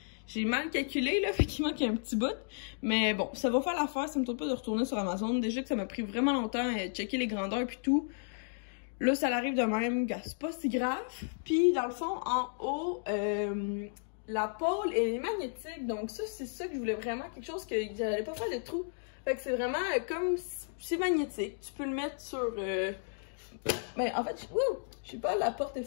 j'ai mal calculé, là. Fait qu'il manque un petit bout. Mais bon, ça va faire l'affaire. Ça me tente pas de retourner sur Amazon. Déjà que ça m'a pris vraiment longtemps à checker les grandeurs puis tout. là, ça arrive de même, c'est pas si grave. Puis, dans le fond, en haut, la pôle, elle est magnétique. Donc, ça, c'est ça que je voulais vraiment, quelque chose que j'allais pas faire de trou. Fait que c'est vraiment comme, c'est magnétique. Tu peux le mettre sur... Ben, en fait, je sais pas, la porte est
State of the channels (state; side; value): silent; right; digital silence